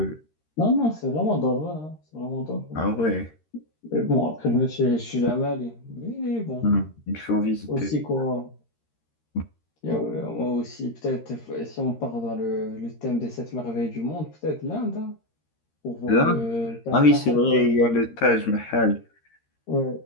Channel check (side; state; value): right; late; 13 ms